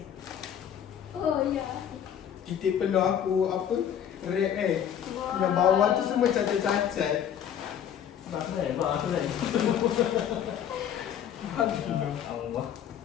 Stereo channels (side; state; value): right; quieter; 9.4 dB